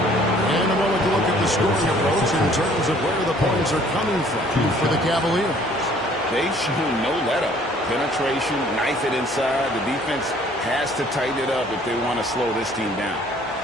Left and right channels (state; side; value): normal; both; correlation 0.57